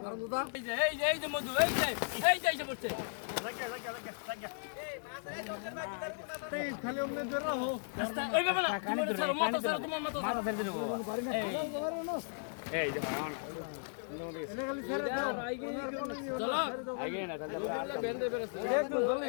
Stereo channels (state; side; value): silent; right; digital silence